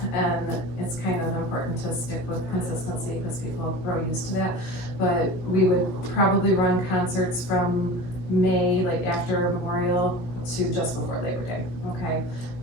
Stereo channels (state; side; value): late; right; 16 ms